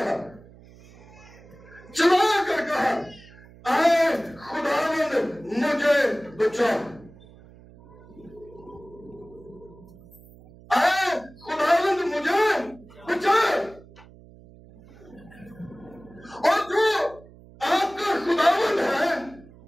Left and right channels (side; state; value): right; noise; hum, 22 dB below the sound